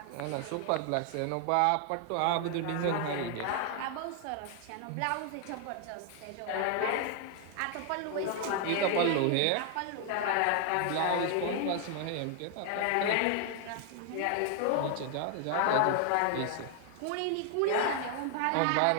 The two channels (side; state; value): both; different; correlation 0.00